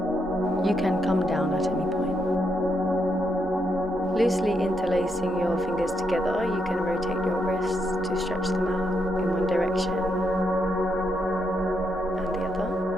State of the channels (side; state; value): both; normal; correlation 0.80